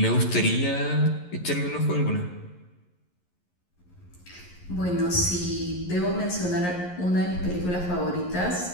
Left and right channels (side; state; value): right; late; 11 ms